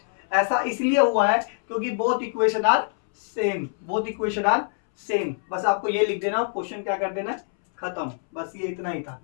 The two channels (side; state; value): right; silent; 62 dB below the other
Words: ऐसा इसलिए हुआ है क्योंकि both equation are same, both equation are same. बस आपको ये लिख देना, क्वेश्चन क्या कर देना, खत्म, बस ये इतना ही था,